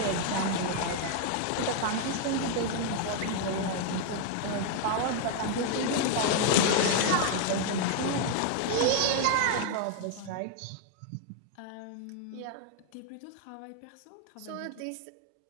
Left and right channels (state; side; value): different; both; correlation 0.00